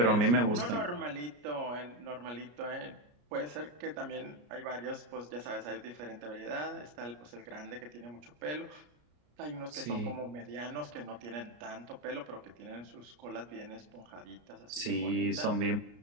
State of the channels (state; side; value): late; left; 33 ms